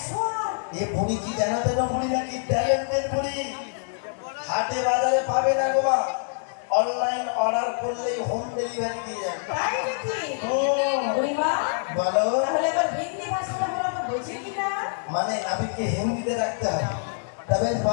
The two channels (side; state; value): right; silent; digital silence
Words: এ বুড়ি কি জানাতে না? বুড়ি নাকি ট্যালেন্টেড বুড়ি। হাটে বাজারে পাবে না গো মা। অনলাইন অর্ডার করলেই হোম ডেলিভারি দিয়ে যাবে। তাই নাকি? বুড়িমা বলো। তাহলে আবার হিন্দি ভাষাটা বলো তো, বুঝি কি না? মানে নাবিককে হিন্দিতে ডাকতে হয়। তবে